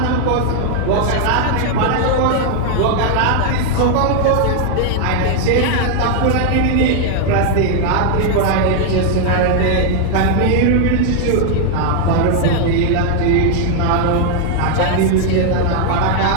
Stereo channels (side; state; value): both; different; correlation 0.00